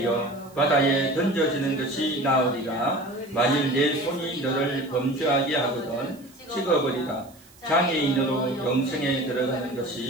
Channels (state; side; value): noise; right; hiss, 26 dB below the sound